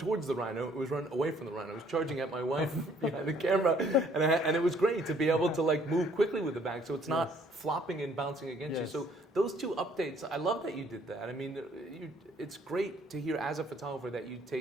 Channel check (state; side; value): normal; both; correlation 0.62